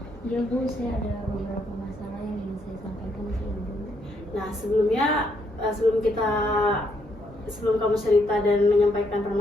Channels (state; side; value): normal; both; correlation 0.74